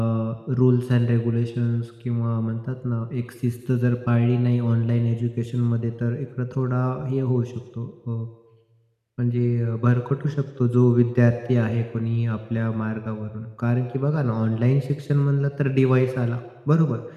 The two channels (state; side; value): identical; both; correlation 1.00